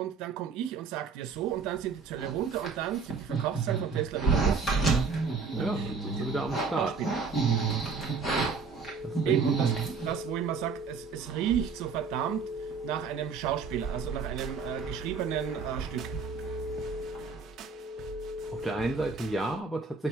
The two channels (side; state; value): left; quieter; 5.0 dB